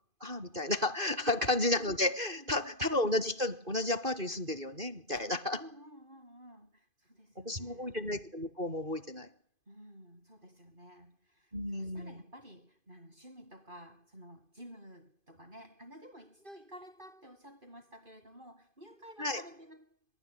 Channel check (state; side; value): late; left; 2.5 ms